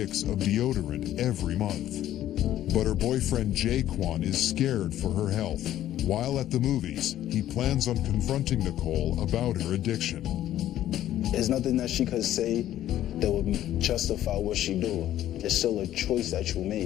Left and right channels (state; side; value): quieter; right; 12.6 dB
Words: of deodorant every month. But her boyfriend Jaquan is scared for her health. While at the movies, he plans on confronting Nicole about her addiction. There's nothing that she could say that would justify what she do. It's still a choice that you